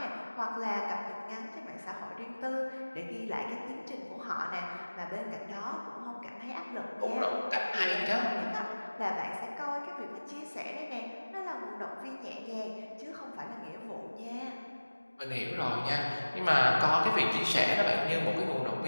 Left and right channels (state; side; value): inverted; both; correlation -1.00